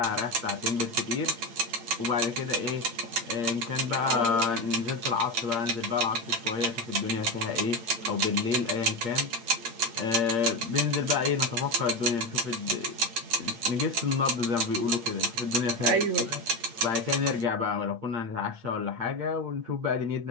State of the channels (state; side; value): late; left; 8.7 ms